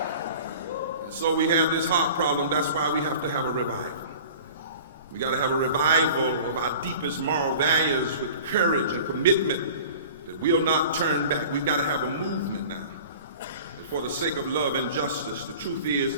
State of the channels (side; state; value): both; inverted; correlation -0.42